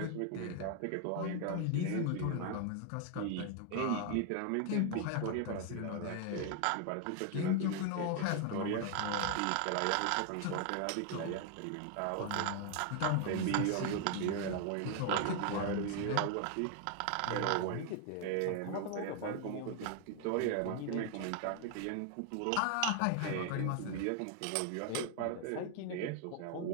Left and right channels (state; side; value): different; both; correlation 0.00